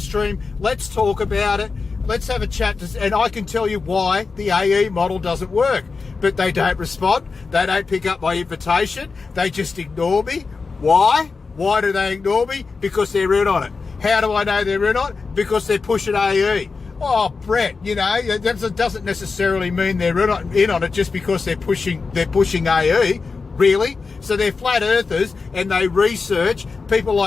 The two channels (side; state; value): right; quieter; 4.5 dB